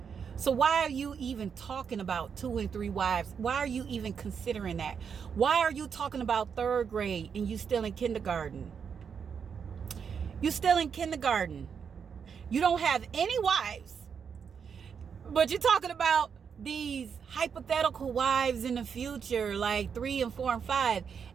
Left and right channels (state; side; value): quieter; left; 6.8 dB